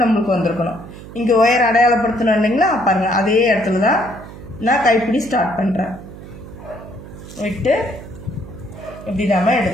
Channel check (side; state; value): right; noise; hum, 15 dB below the sound